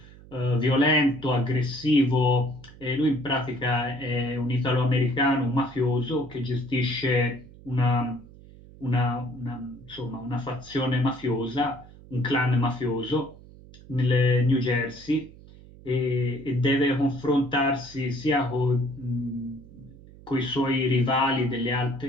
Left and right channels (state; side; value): noise; right; hum, 21 dB below the sound